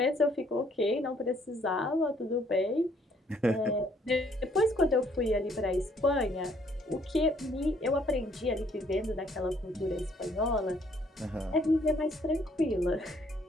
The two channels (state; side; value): normal; both; correlation 0.65